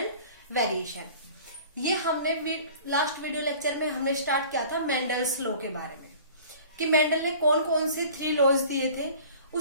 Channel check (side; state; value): both; inverted; correlation -0.45